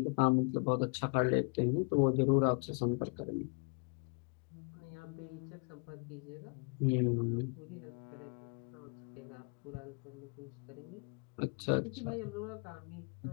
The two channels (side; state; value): right; quieter; 38.9 dB